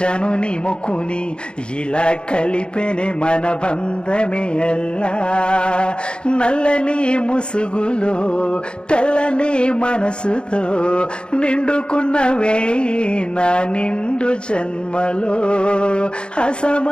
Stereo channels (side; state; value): right; late; 0.053 ms